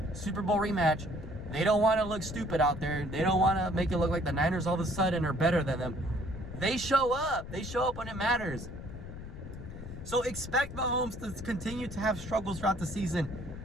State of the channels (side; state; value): left; noise; rumble, 11 dB below the sound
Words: Super Bowl rematch, they don't want to look stupid out there. They don't want to make it look like the Niners all of a sudden are better than them. They show up. They show up when it matters. So expect Mahomes to continue to have struggles throughout the